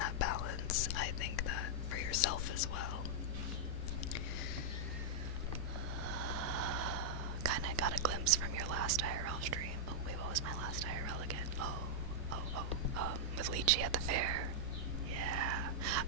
balance. I think that for yourself as well. Kinda got a glimpse from your last IRL stream. Oh wait, what was my last IRL again? With Lychee at the fair. Yeah,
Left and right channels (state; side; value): normal; both; correlation -0.05